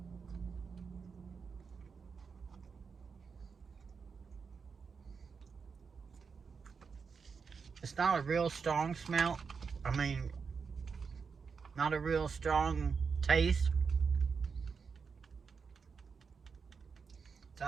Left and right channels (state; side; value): quieter; left; 5.5 dB